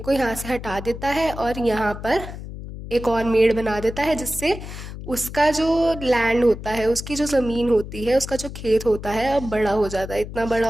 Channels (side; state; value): left; noise; hum, 10 dB below the sound